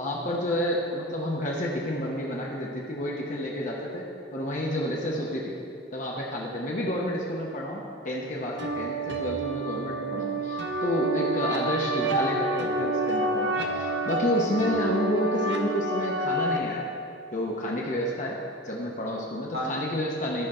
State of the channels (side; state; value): both; normal; correlation 0.30